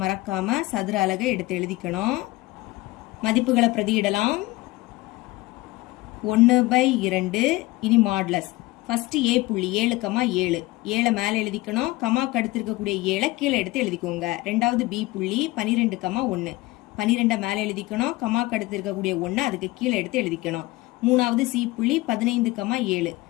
மறக்காம சதுர அலகை எடுத்து எழுதிக்கணும். மதிப்புகளை பிரதியிடலாம். 1/2 இனி மாடுலஸ். ஃபர்ஸ்ட் A புள்ளி 7, 7. 7 மேல எழுதிக்கணும். கமாக்கு அடுத்து இருக்கக்கூடிய 7 கீழே எடுத்து எழுதிக்கோங்க. ரெண்டாவது B புள்ளி 12, 1. 12 மேல எழுதிக்கணும். கமாக்கு அடுத்து இருக்கக்கூடிய 1 அதுக்கு கீழே எடுத்து எழுதிக்கணும். மூணாவது C புள்ளி 15, 7.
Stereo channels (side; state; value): right; quieter; 20.1 dB